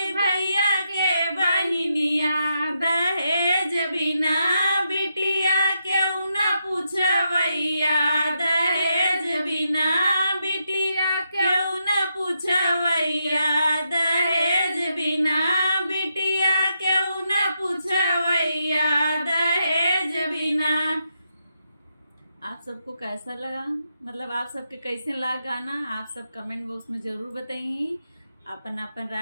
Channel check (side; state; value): both; inverted; correlation -0.82